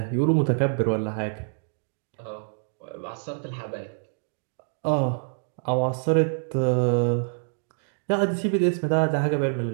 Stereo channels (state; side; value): silent; left; digital silence